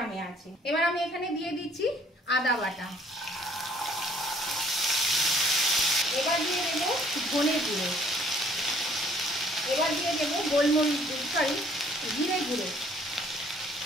আছে। এবার আমি এখানে দিয়ে দিচ্ছি আদা বাটা। এবার দিয়ে দেবো ধনে গুঁড়ো। এবার দিয়ে দেবো জিরে গুঁড়ো।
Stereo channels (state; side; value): normal; both; correlation 0.60